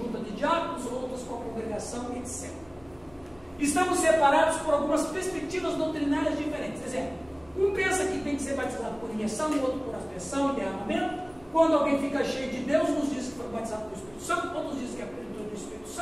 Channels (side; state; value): right; noise; rumble, 28 dB below the sound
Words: de diáconos, outras com a congregação, etc. Estamos separados por algumas perspectivas doutrinárias diferentes. Exemplo, um pensa que tem que ser batizado por imersão, o outro por aspersão e derramamento. Quando alguém fica cheio de Deus, nos diz que foi batizado pelo Espírito Santo, outros dizem que é plenitude do Espírito